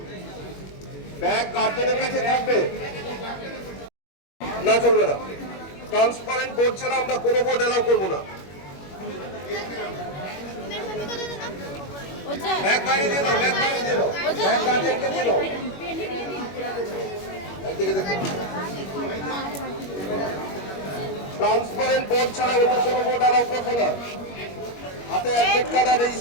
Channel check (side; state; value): right; late; 21 ms